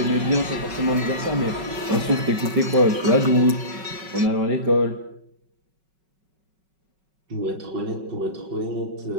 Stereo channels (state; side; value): late; left; 5.4 ms